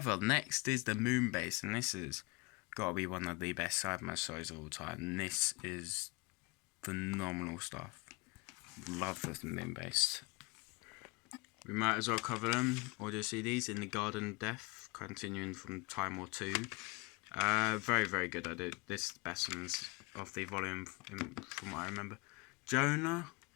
next is the Moonbase, and this has got to be one of the best Cyberman stories of all time. This is phenomenal stuff. Love the Moonbase. We might as well cover them. Audio CDs in the Garden of Death, continuing from Time War 2. Very, very good. I did this is the best ones of the volume from what I remember. Jonah.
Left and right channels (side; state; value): right; quieter; 26.9 dB